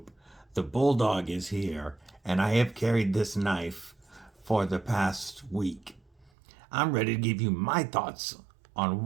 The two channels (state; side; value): drops out; left; at 6.3 s